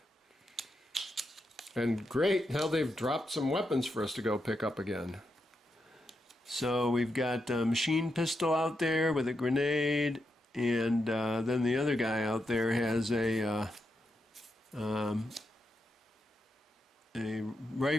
And great, now they've dropped some weapons for us to go pick up again. So we've got a machine pistol out there with a grenade, and then the other guy out there has a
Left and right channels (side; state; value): both; normal; correlation 0.84